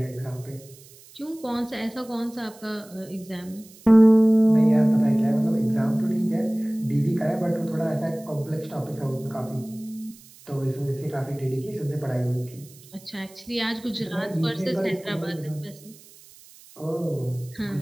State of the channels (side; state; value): right; noise; hiss, 23 dB below the sound